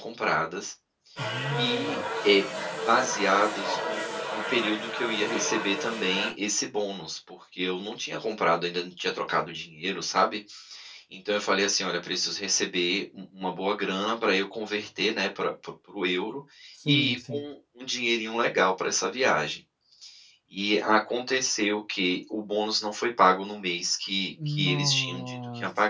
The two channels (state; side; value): identical; both; correlation 1.00